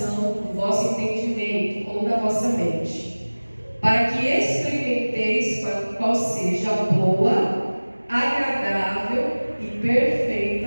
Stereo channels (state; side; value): inverted; both; correlation -1.00